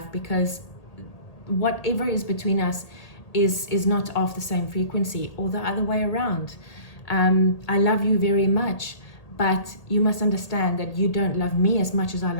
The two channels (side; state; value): right; late; 1.8 ms